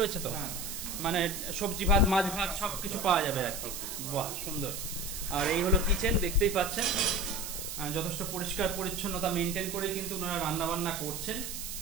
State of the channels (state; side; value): noise; right; hiss, 6 dB below the sound